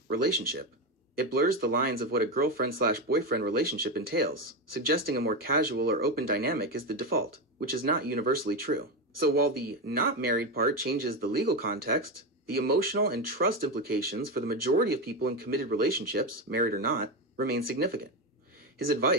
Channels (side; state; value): both; normal; correlation 0.14